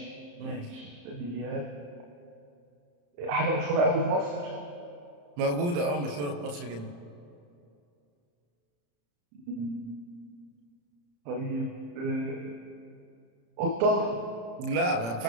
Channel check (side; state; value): left; late; 35 ms